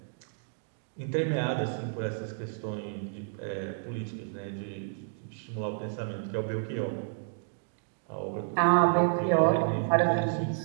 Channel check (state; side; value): silent; left; digital silence